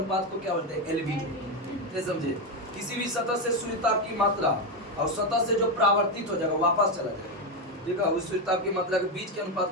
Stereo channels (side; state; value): both; normal; correlation 0.09